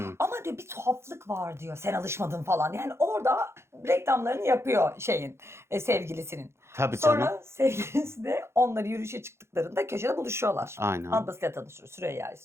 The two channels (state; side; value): late; left; 0.13 ms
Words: Ama diyor bir tuhaflık var diyor. Sen alışmadın falan. Yani orada reklamlarını yapıyor sevgilisinin. Tabii canım. Sonra sevgilisi de onları yürüyüşe çıktıklarında köşede buluşuyorlar. Aynen. Ablasıyla tanışıyor. Süreyya